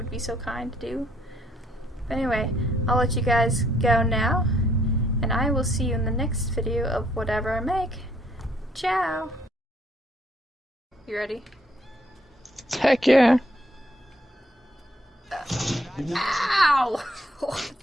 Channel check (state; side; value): normal; both; correlation 0.68